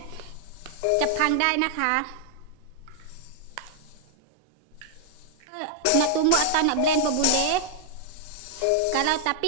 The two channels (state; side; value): different; both; correlation -0.01